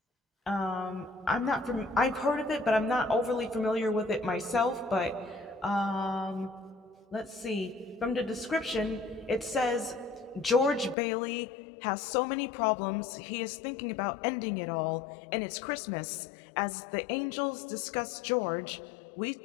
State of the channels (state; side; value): drops out; right; at 11.0 s